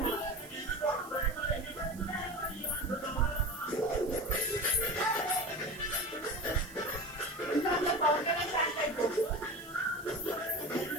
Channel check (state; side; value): noise; right; hiss, 19 dB below the sound